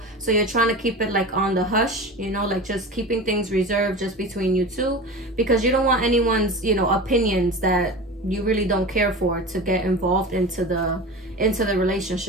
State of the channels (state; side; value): normal; both; correlation 0.31